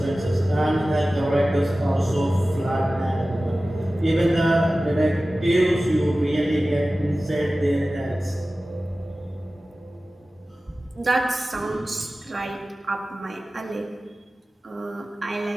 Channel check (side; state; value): both; normal; correlation 0.96